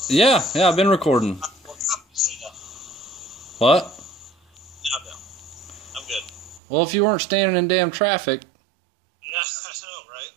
yet? Yeah, I've been recording. What? No, no. I'm good. Well, if you weren't standing in damn traffic... Yeah, I know, right?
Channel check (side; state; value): left; drops out; at 6.6 s